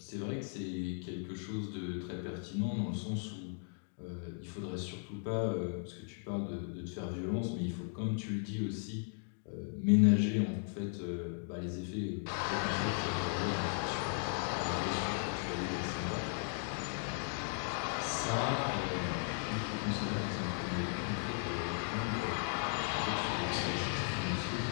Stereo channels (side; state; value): right; silent; 53 dB below the other